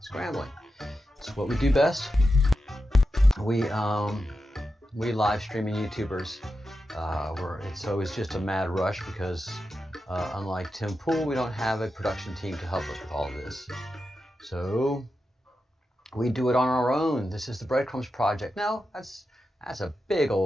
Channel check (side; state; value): both; normal; correlation 0.90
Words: It's what we do best. We live streaming YouTubers. It's always just a mad rush because unlike Tim Pool, we don't have a production team to help us with all of this. So we do it on our own. This is the Breadcrumbs project. No, that's a big